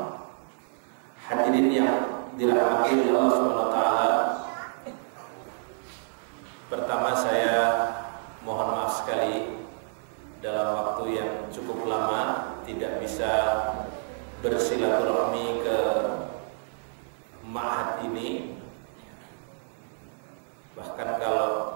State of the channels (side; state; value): left; silent; 59 dB below the other